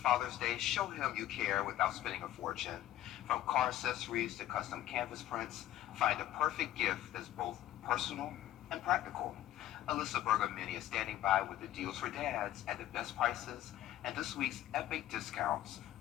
Father's Day. Show him you care without spending a fortune. From car accessories to custom canvas prints, find a perfect gift that's both personal and practical. Alyssa Bergamini is standing by with the deals for dads at the best prices and this week's epic discounts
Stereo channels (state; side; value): quieter; right; 13.4 dB